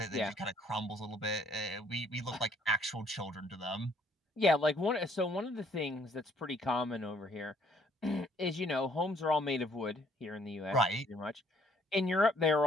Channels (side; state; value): both; normal; correlation 0.63